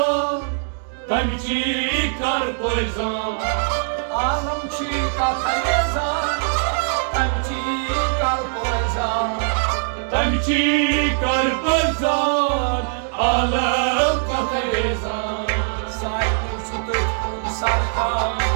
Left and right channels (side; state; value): left; silent; 65 dB below the other